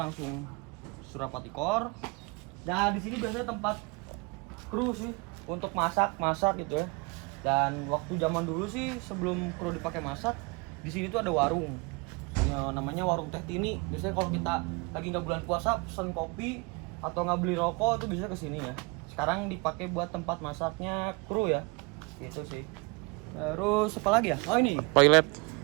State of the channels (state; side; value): quieter; left; 29.1 dB